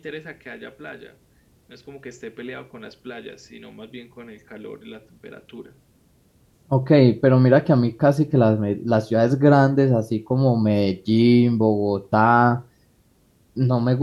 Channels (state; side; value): identical; both; correlation 1.00